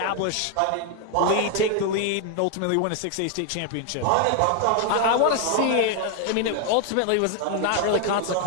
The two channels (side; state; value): both; different; correlation 0.00